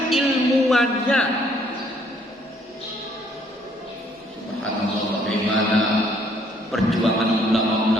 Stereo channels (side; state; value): both; normal; correlation 0.65